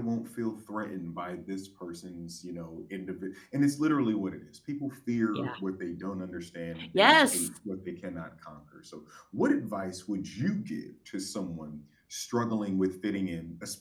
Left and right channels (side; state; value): both; identical; correlation 1.00